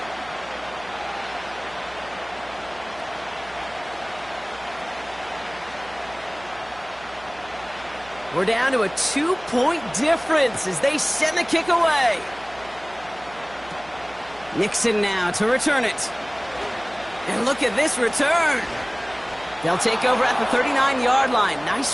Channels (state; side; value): noise; right; hum, 22 dB below the sound